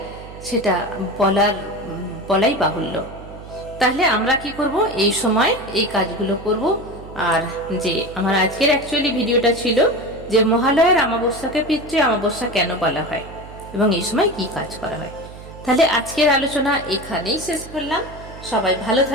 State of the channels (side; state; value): right; noise; hum, 16 dB below the sound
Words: সেটা বলাই বাহুল্য। তাহলে আমরা কি করব, এই সময় এই কাজগুলো করব। আর যে আমার আজকের অ্যাকচুয়ালি ভিডিওটা ছিল যে মহালয়ার অমাবস্যাকে পিতৃ অমাবস্যা কেন বলা হয় এবং এই সময় কি কাজ করা হয়। তাহলে আজকের আলোচনা এখানেই শেষ করলাম। সবাই ভালো